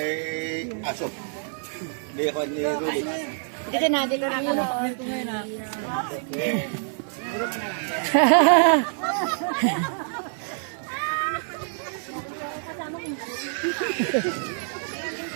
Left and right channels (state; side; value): silent; left; 56 dB below the other